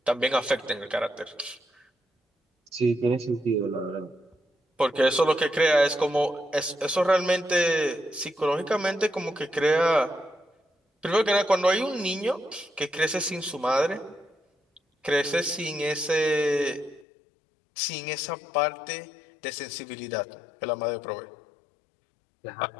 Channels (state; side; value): drops out; right; at 17.1 s